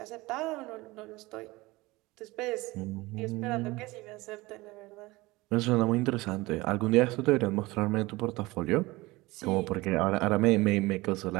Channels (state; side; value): quieter; left; 21.2 dB